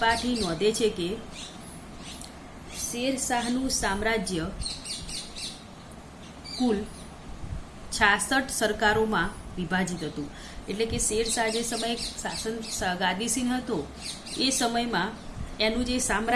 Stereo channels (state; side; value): identical; both; correlation 1.00